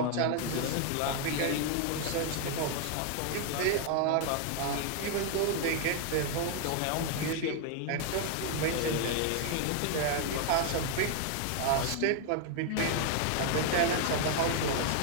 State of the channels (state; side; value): different; both; correlation 0.00